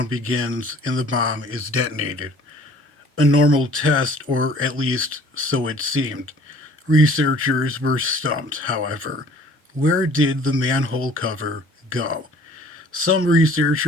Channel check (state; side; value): normal; both; correlation 0.53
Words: begins and the bomb is detonated. A normal test, or at least so it seemed. Researchers were stumped, however. Where did the manhole cover go? Some